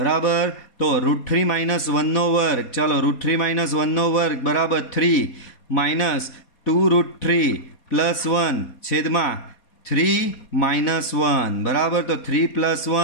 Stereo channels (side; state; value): right; late; 4.2 ms